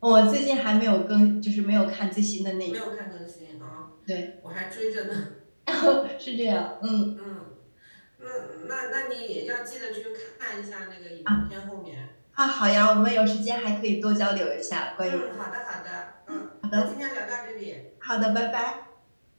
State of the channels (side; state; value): both; inverted; correlation -1.00